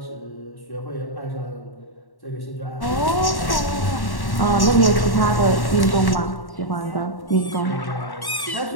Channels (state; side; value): late; right; 1.1 ms